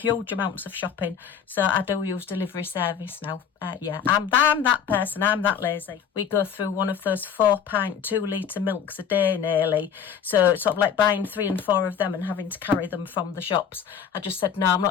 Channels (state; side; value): quieter; right; 7.7 dB